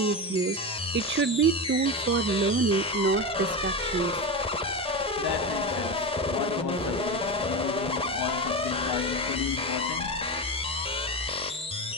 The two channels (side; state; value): both; normal; correlation 0.19